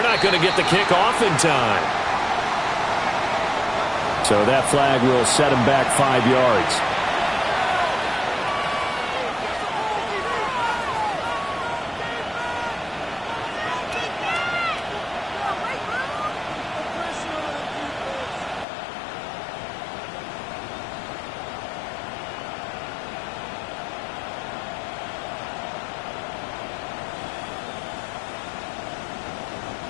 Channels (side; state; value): right; drops out; at 18.7 s